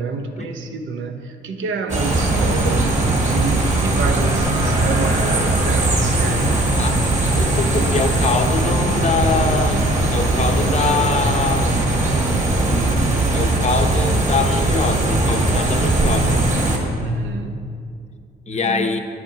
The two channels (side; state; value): both; normal; correlation 0.55